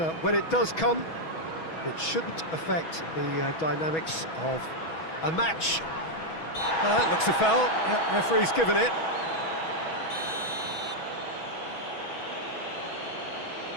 when it does come, it shouldn't affect the dynamics of a match. That looks a foul. Yep, referee's given it.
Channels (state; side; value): late; right; 6.2 ms